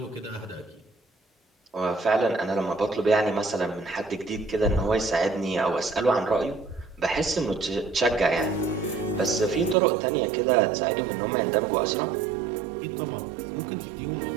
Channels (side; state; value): left; drops out; at 9.8 s